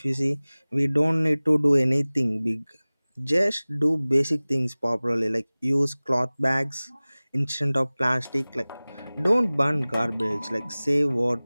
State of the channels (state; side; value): inverted; both; correlation -0.99